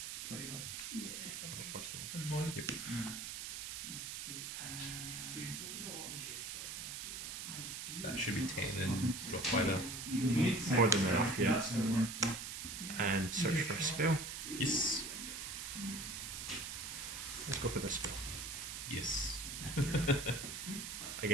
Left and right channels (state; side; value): noise; right; hiss, 6 dB below the sound